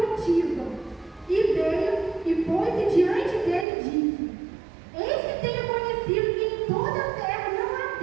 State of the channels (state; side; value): drops out; left; at 3.7 s